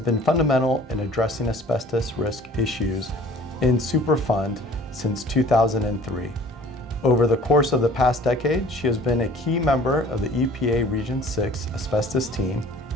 fundamental in addressing asbestos risk issues in Superfund since 2003. Over the course of the past decade, she has been a key member of the EPA Region 6 asbestos team,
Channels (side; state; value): both; normal; correlation 0.49